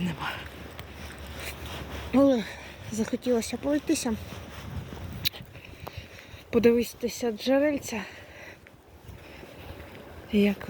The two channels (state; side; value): identical; both; correlation 1.00